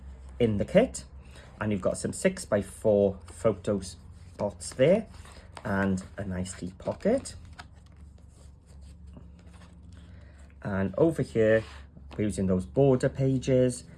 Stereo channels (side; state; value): both; identical; correlation 1.00